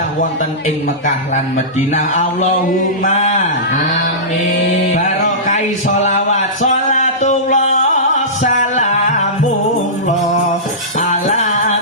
wonten ing Mekah lan Madinah. Allahumma amin. Barokai sholawat sholatullah salamullah ala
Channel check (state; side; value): normal; both; correlation -0.19